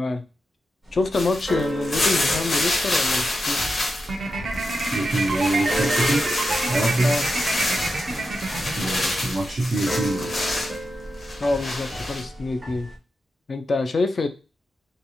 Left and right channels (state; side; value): normal; both; correlation 0.88